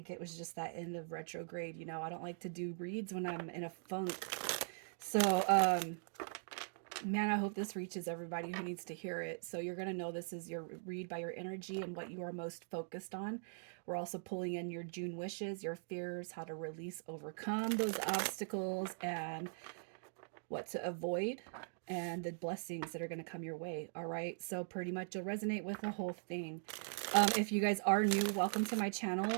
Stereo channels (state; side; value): silent; left; digital silence